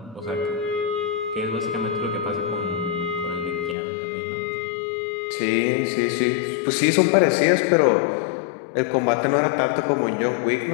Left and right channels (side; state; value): right; drops out; at 3.8 s